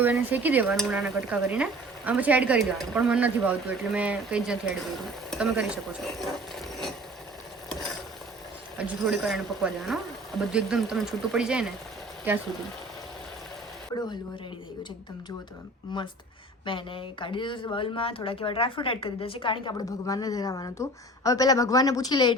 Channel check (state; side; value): normal; both; correlation 0.45